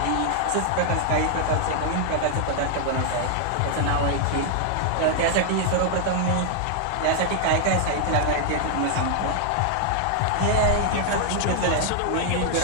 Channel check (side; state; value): both; different; correlation 0.00